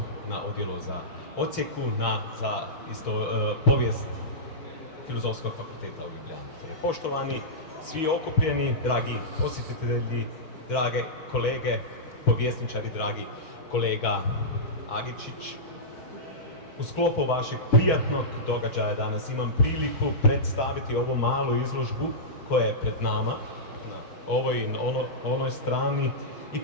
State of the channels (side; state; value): right; late; 4.6 ms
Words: na odjelu za odsjeku za povijest Filozofskog fakulteta u Ljubljani. Poštovani, svi okupljeni, dragi posjetitelji, drage kolege, povjesničari, dragi kolega Agičić, u sklopu vašeg prijatnog događaja danas imam priliku predstaviti ovu malu izložbu koja je pred nama, na ovoj i onoj strani, i